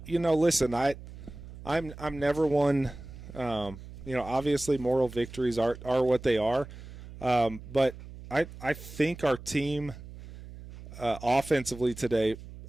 Listen, I'm never one. Obviously moral victories are what they are. But I think our team offensively today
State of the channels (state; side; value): noise; right; hum, 15 dB below the sound